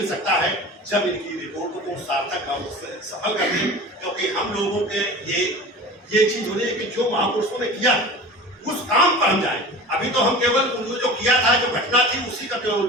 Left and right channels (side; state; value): both; normal; correlation 0.36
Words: सकता है जब इनकी रिपोर्टों को सार्थक और सफल कर दें। क्योंकि हम लोगों के ये चीज होनी है कि जो महापुरुषों ने किया उस काम पर हम जाएं। अभी तो हम केवल जो किया था, जो घटना थी, उसी का केवल